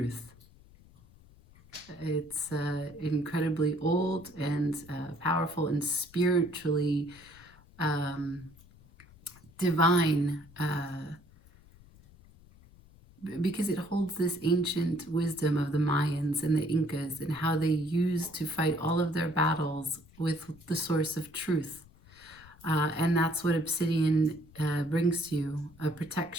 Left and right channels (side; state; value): left; noise; rumble, 25 dB below the sound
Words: It's incredibly old and powerful and spiritually divine, because it holds this ancient wisdom of the Mayans and the Incas and how they used to fight all of their battles with the source of truth. And that's what obsidian brings to you, a